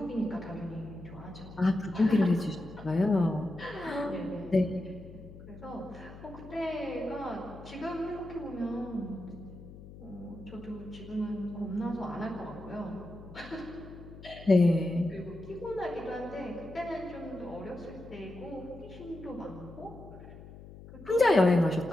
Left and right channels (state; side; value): noise; left; hum, 16 dB below the sound